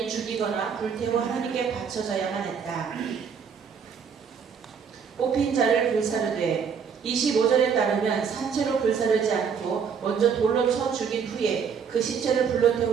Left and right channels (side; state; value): left; quieter; 6.6 dB